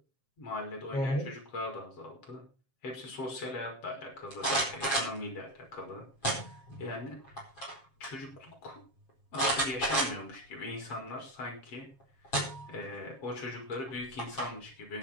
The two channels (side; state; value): right; late; 7.5 ms